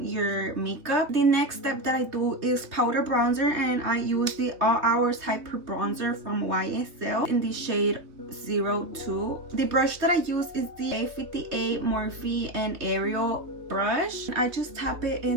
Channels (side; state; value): left; late; 3.2 ms